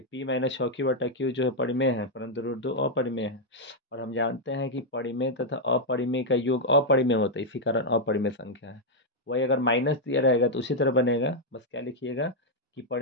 p - 6 की बटा क्यू जो है परिमेय है, परंतु √2 अपरिमेय है। और हम जानते हैं कि परिमेय तथा अपरिमेय का योग अपरिमेय होता है, इसी कारण अपरिमेय संख्या है। वही अगर माइनस दिया रहेगा तो उसी तरह बनेगा, बस क्या लिखिएगा कि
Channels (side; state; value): both; normal; correlation -0.02